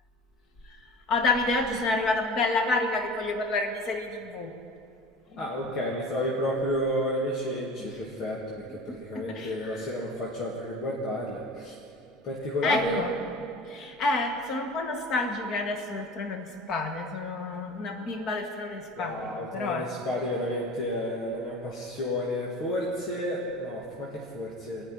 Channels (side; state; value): both; normal; correlation 0.37